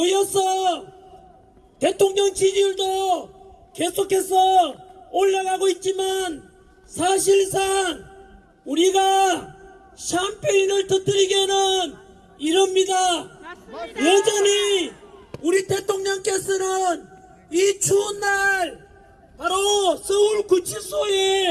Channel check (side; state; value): both; identical; correlation 1.00